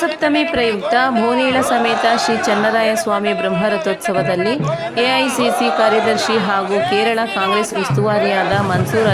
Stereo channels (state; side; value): identical; both; correlation 1.00